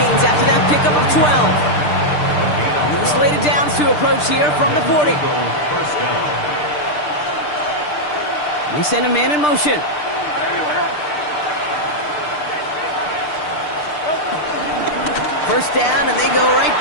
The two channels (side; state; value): right; late; 6.7 ms